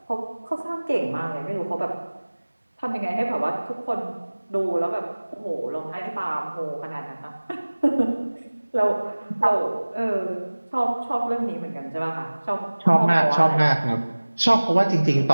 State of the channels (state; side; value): inverted; both; correlation -1.00